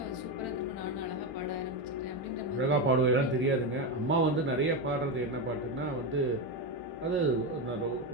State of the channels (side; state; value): both; normal; correlation 0.12